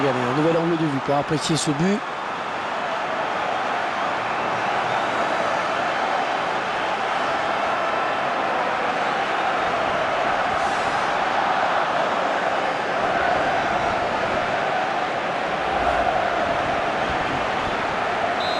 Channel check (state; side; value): identical; both; correlation 1.00